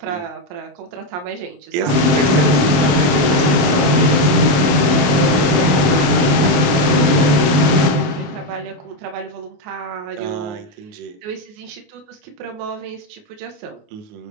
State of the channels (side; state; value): left; late; 27 ms